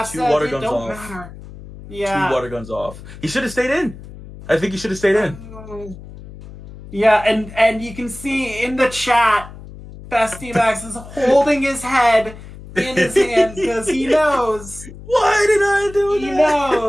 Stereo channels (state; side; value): noise; left; hum, 16 dB below the sound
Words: water guns off. Matter. Yeah. 2 water guns off. He should have stayed in. I think he should have stayed in. Yeah, and you can see in the chat, Bestiamax is holding his head in his hand because he knows. Why did I do that? He